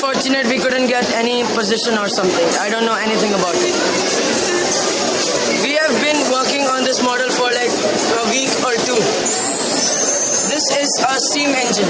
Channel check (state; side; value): identical; both; correlation 1.00